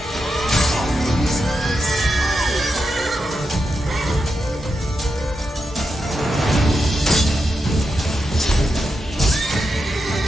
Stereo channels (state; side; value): normal; both; correlation 0.87